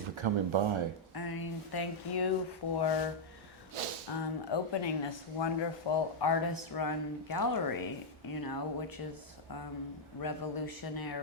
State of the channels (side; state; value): both; normal; correlation -0.04